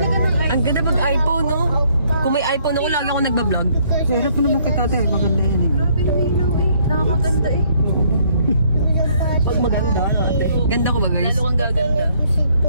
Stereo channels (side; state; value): both; inverted; correlation -0.66